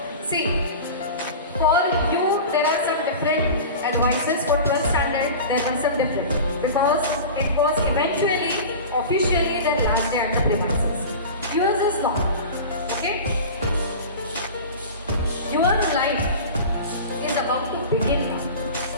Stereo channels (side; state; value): both; inverted; correlation -0.33